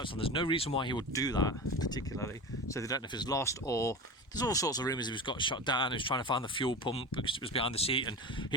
on. There's no reason why he would do that particularly, so they don't know if he's lost, or there's all sorts of rumours he was got shot down. He was trying to find the fuel pump because it was behind the seat, and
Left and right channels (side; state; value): both; normal; correlation 0.28